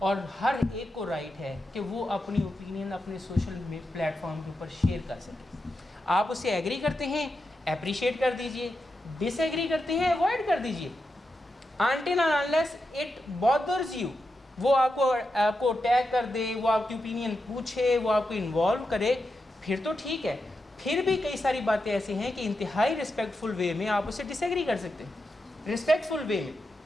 ہر ایک کو رائٹ ہے کہ وہ اپنی اوپینین اپنے سوشل پلیٹ فارم کے اوپر شیئر کر سکے. آپ اس سے ایگری کرتے ہیں اپریشیٹ کر دیجئے, ڈس ایگری کرتے ہیں اوائڈ کر دیجئے. until and unless it bothers you, وہ آپ کو ٹیگ کر دے, وہ آپ کی اوپینین پوچھے, وہ آپ کو انوالو کرے, پھر تو ٹھیک ہے. پھر بھی کئی ساری باتیں ایسی ہیں کہ انتہائی رسپیکٹفل وے میں آپ اسے ڈس ایگری کر سکتے ہیں. رسپیکٹفل وے میں,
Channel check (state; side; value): normal; both; correlation 0.87